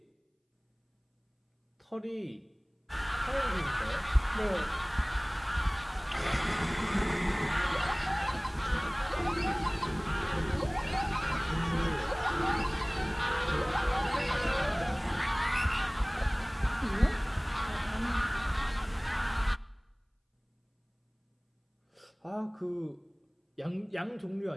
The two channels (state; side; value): identical; both; correlation 1.00